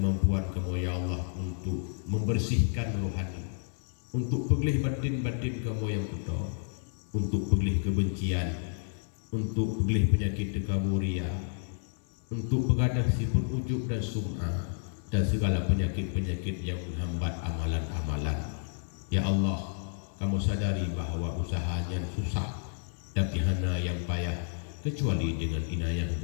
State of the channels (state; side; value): silent; right; 56 dB below the other